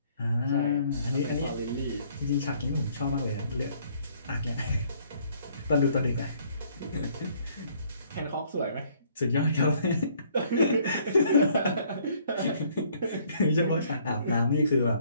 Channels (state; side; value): inverted; both; correlation -0.63